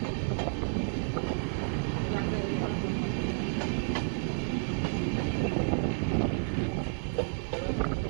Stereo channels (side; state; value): left; silent; digital silence